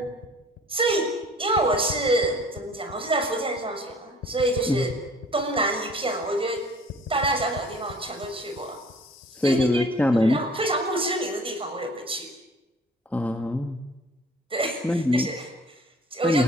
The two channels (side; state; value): both; normal; correlation 0.50